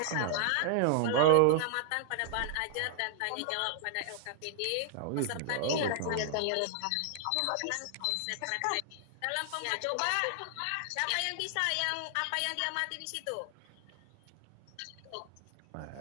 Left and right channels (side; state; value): both; different; correlation -0.01